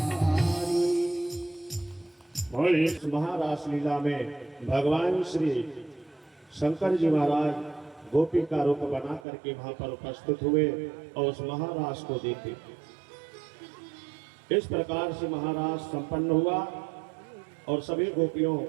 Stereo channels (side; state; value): left; drops out; at 9.2 s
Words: और इस महारास लीला में भगवान श्री शंकर जी महाराज गोपी का रूप बना करके वहां पर उपस्थित हुए और उस महारास को देखे। इस प्रकार से महारास संपन्न हुआ और सभी गोपियों